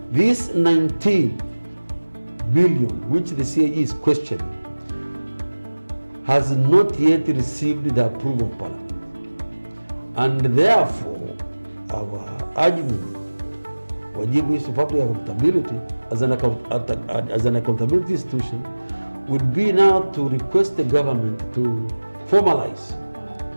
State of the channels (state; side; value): inverted; both; correlation -1.00